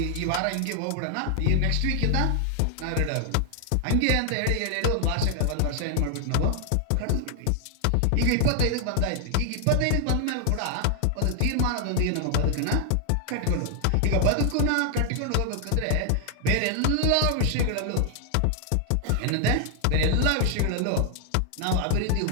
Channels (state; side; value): different; both; correlation 0.00